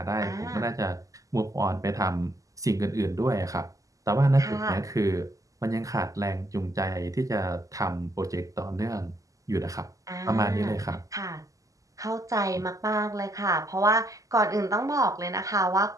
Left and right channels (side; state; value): left; late; 0.16 ms